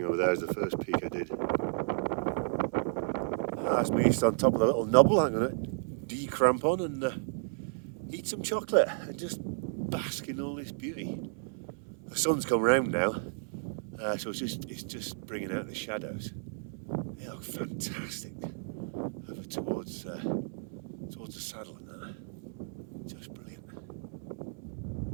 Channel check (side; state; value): left; silent; 56 dB below the other